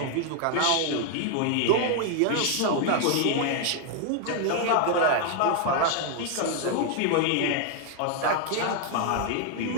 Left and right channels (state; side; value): different; both; correlation 0.00